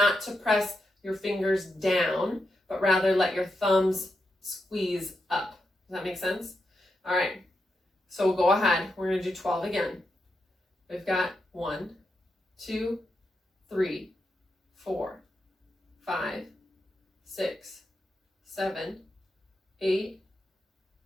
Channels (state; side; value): normal; both; correlation 0.86